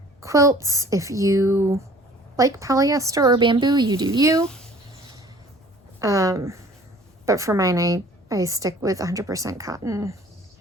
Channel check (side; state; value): both; normal; correlation 0.51